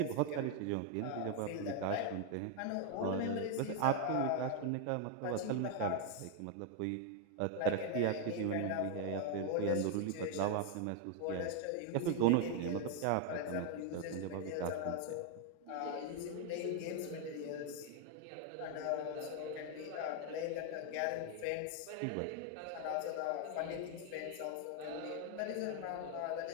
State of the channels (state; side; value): different; both; correlation 0.00